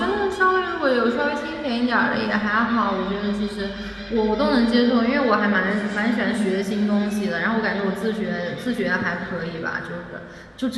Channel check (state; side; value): identical; both; correlation 1.00